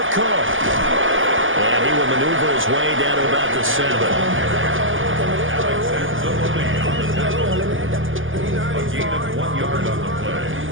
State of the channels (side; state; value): left; late; 0.58 ms